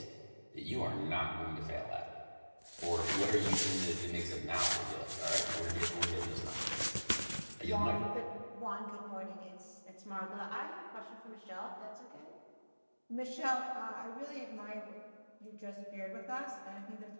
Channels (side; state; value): both; inverted; correlation -1.00